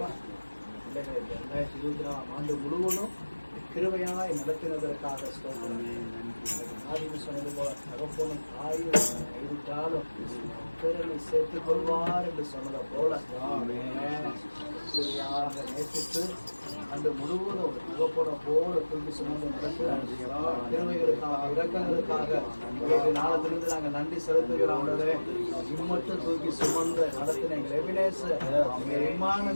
பிள்ளைகளை 2024 ஆண்டு முழுவதும் கிருபையாய் நடத்தினதற்காக சொன்னது போல தகப்பனும் தாயும் கைவிட்டாலும் பிறனை சேர்த்துக் கொள்வார் என்று சொன்னதை போல கிருபையாக நேசித்து அன்று முழுவதும் ஒரு தகப்பனை போல தூக்கி சுமந்து நடக்கிறார். கிருபைகளுக்காக இரக்கங்களுக்காக நாளத்திலிருந்து நாங்கள் நன்றி செலுத்துகிறோம். இம்மட்டும் தூக்கி சுமந்து நடத்தின எங்கள் எபினேசர்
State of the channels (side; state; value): both; inverted; correlation -1.00